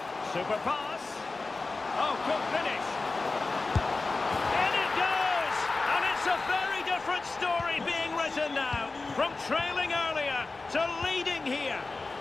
Super pass. Oh, good finish. In it goes! And it's a very different story being written now. From trailing earlier to leading here.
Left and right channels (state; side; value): quieter; right; 3.6 dB